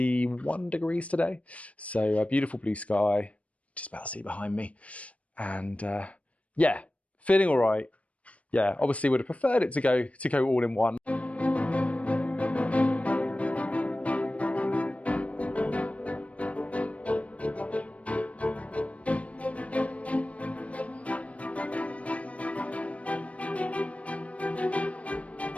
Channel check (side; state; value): right; late; 0.065 ms